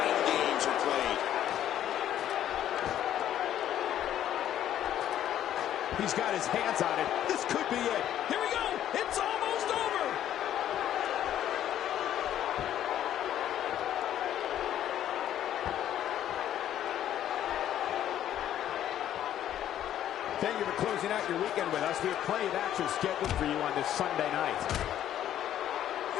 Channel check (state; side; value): quieter; right; 11.3 dB